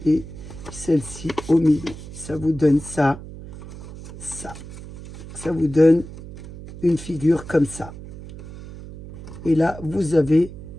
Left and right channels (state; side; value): noise; right; hum, 14 dB below the sound